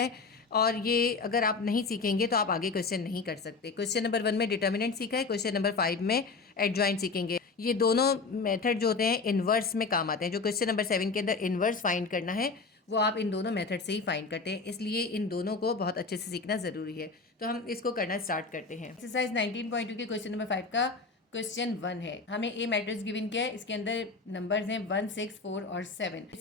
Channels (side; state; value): right; quieter; 4.3 dB